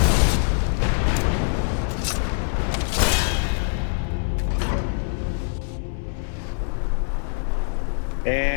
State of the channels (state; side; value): silent; right; digital silence